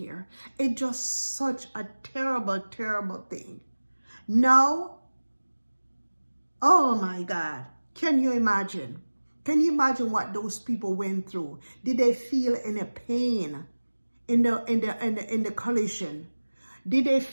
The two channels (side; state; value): both; inverted; correlation -1.00